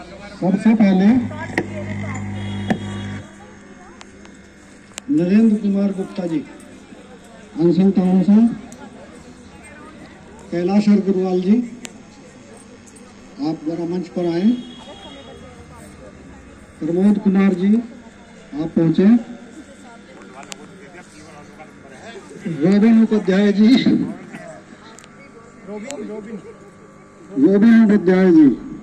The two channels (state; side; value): identical; both; correlation 1.00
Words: सबसे पहले नरेंद्र कुमार गुप्ता जी, अनशन टाउन से। कैलाश अग्रवाल जी, आप जरा मंच पर आए। प्रमोद कुमार जी, आप पहुंचे। Robin Upadhyay ji, robin Upadhyay ji.